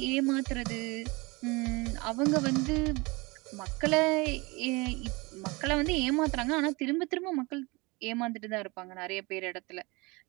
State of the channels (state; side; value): quieter; left; 25.7 dB